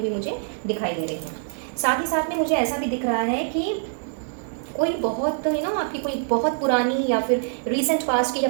मुझे दिखाई दे रही हैं। साथ ही साथ में मुझे ऐसा भी दिख रहा है कि कोई बहुत आपकी कोई बहुत पुरानी या फिर रिसेंट पास्ट की या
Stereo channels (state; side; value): silent; left; digital silence